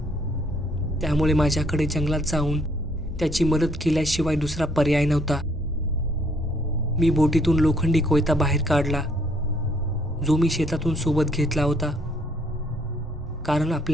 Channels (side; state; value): both; normal; correlation 0.66